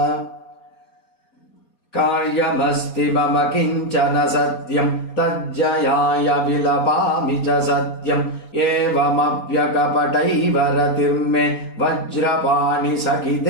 कार्यमस्ति मम किञ्चन सत्यं तज्जयाय विलपामि च सत्यम् एवमप्यकपटैव रतिर्मे वज्रपाणि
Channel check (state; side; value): late; right; 4.3 ms